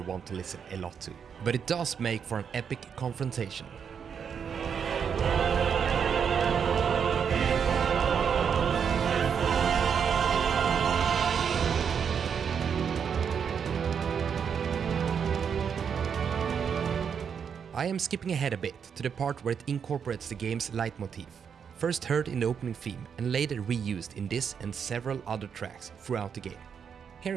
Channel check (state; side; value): quieter; left; 7.1 dB